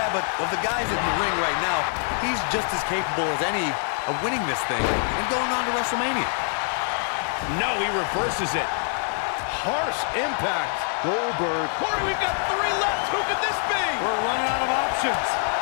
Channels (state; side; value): silent; right; 55 dB below the other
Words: but of the guys in the ring right now, he's just as capable as any of winning this thing and going on to WrestleMania. No, he reverses it. Harsh impact. Goldberg. Corey, we've got 3 left. Who could this be? We're running out of options.